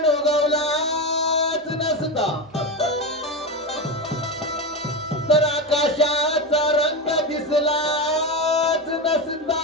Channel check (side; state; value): both; normal; correlation 0.17